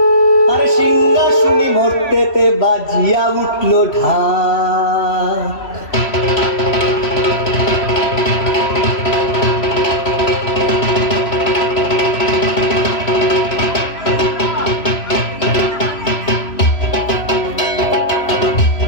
আরে সিংহা শুনি মরতেতে বাজিয়া উঠলো ঢাক।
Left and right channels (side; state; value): right; late; 3.0 ms